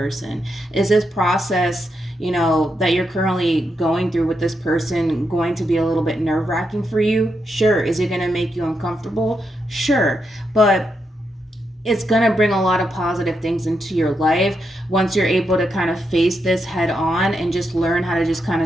Is this process, that you're currently going through with this person going to be a little bit nerve-wracking for you? Sure. Is it going to make you uncomfortable? Sure. But it's going to bring a lot of positive things into your life once you're able to kind of face this head on and just learn how to just kind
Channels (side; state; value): both; normal; correlation 0.83